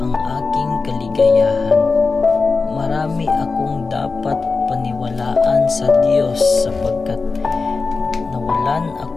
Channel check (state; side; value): quieter; right; 4.2 dB